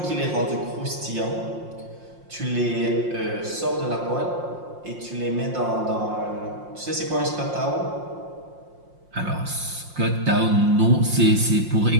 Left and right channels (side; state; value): left; late; 5.6 ms